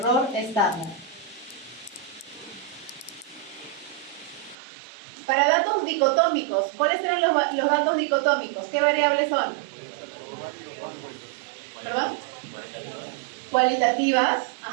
estándar. Para datos dicotómicos, ¿cuáles eran los datos dicotómicos? ¿Qué variables son? ¿Perdón? Cualitativas,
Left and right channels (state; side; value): drops out; left; at 4.5 s